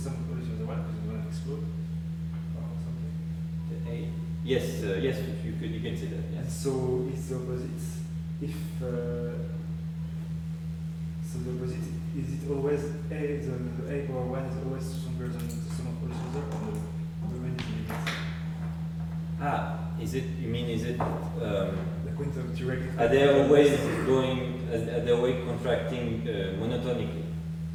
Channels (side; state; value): both; identical; correlation 1.00